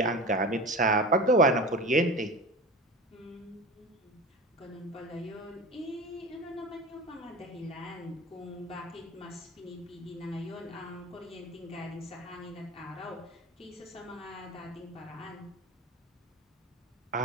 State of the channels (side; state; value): both; normal; correlation 0.32